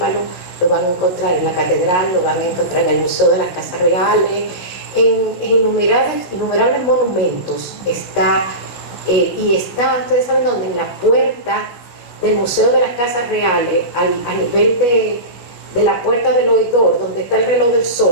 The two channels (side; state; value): right; late; 16 ms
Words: Lo van a encontrar en la catedral, lo van a encontrar en el Museo de las Casas Reales, en innumerables monumentos. Ustedes saben dónde, en la puerta del Museo de las Casas Reales, a nivel de la puerta del oidor, donde está el reloj del